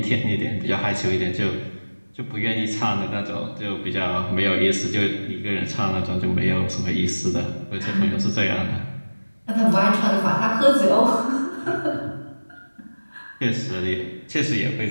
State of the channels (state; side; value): inverted; both; correlation -1.00